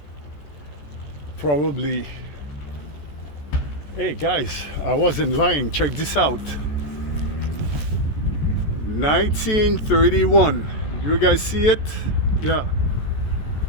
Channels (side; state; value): right; late; 14 ms